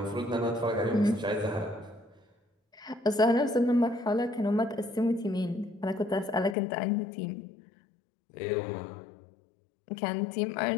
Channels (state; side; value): drops out; right; at 6.6 s